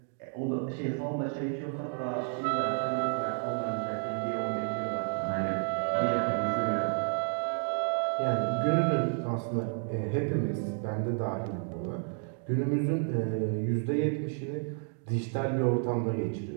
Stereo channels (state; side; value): silent; left; 57 dB below the other